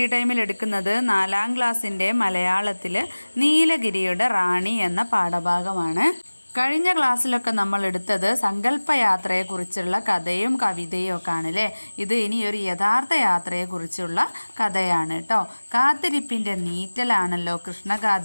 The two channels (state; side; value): inverted; both; correlation -1.00